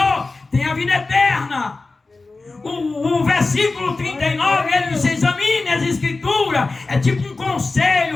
tem a vida eterna. O versículo 39, ele diz: examine as Escrituras. É tipo um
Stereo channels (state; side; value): quieter; right; 3.6 dB